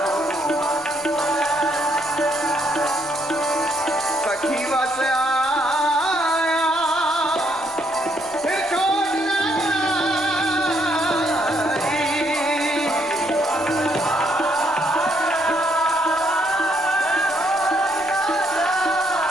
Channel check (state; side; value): noise; left; rumble, 29 dB below the sound